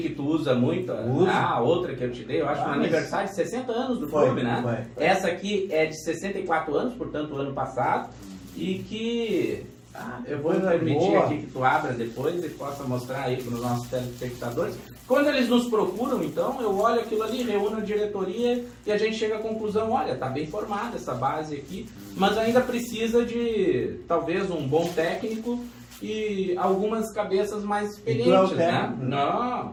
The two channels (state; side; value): identical; both; correlation 1.00